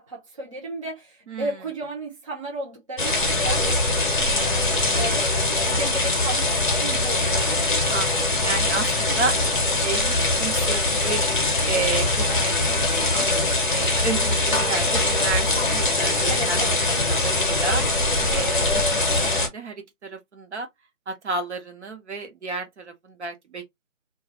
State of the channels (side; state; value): both; normal; correlation -0.10